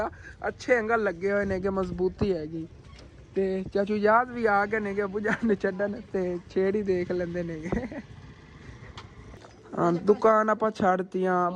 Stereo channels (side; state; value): both; identical; correlation 1.00